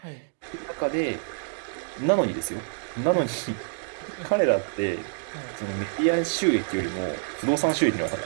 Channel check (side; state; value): left; silent; digital silence